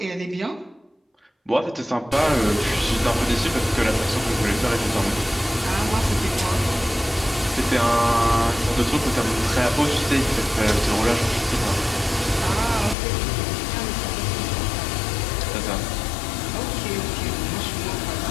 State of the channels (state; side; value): drops out; right; at 13.0 s